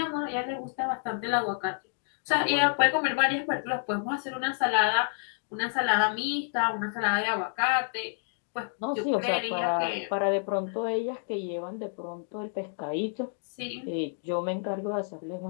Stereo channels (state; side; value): silent; right; digital silence